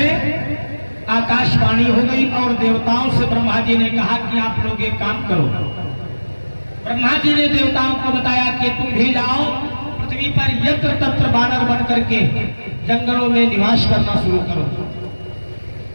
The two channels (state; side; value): inverted; both; correlation -1.00